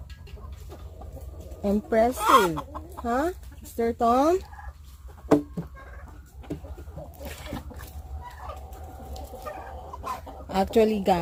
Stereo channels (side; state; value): both; identical; correlation 1.00